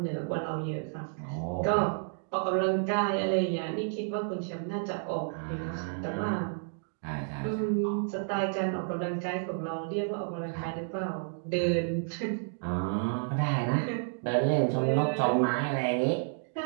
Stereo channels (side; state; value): left; silent; digital silence